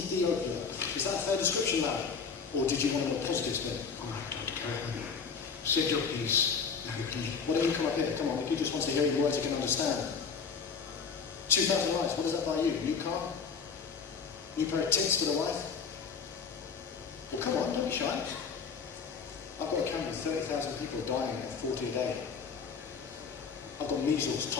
Is that a fair description, lad? Or did you want a more positive spin? All right, Dr. Karmaveer. Said your piece. Why don't you come up here? Come on, he just wants to hear your words he can understand. 2,000 lives, what does that buy you? New car? New pair of tits for the wife? Well, come on, don't be shy. I've got a camp with 30,000 people dying at 40 a day. I've got measles,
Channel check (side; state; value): right; quieter; 5.8 dB